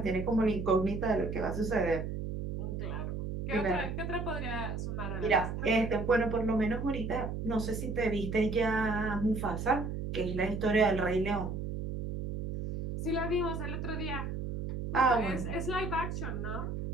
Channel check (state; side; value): noise; right; hum, 4 dB below the sound